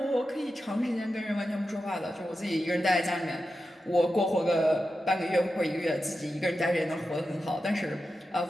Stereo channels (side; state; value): both; normal; correlation 0.91